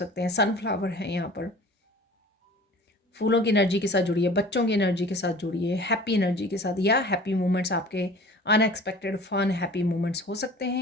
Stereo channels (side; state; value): both; normal; correlation 0.44